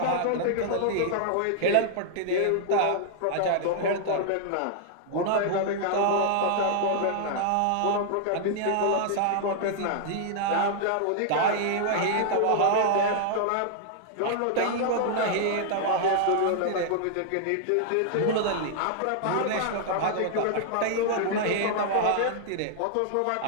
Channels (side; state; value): both; different; correlation -0.01